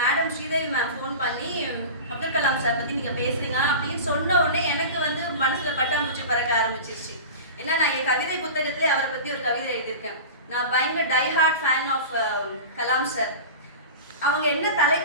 ஸ்ரீதேவி மேம் ஃபோன் பண்ணி அப்துல் கலாம் சார் பற்றி நீங்கள் பேசுகிறீங்க அப்படின்னு சொன்ன உடனே எனக்கு வந்து மனசில் பட்டாம்பூச்சி பறக்க ஆரம்பிச்சிருச்சு. ஏன்னா நான் என் கவிதை புத்தகத்திலே அவரை பற்றி ஒரு கவிதை எழுதியிருக்கேன். நான் பயங்கர diehard fan of Kalam sir. அவங்க என்ன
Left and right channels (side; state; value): both; inverted; correlation -0.31